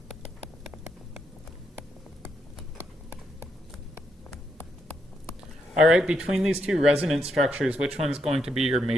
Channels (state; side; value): normal; both; correlation 0.79